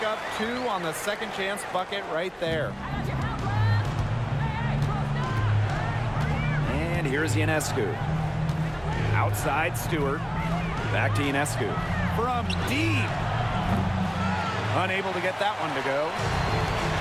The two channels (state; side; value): identical; both; correlation 1.00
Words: up 2 on the second chance bucket right there. And here's Ionescu. Outside, Stewart. Back to Ionescu. From deep. Unable to get that one to go.